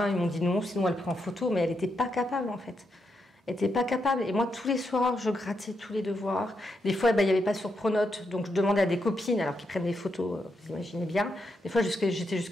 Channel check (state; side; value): normal; both; correlation 0.82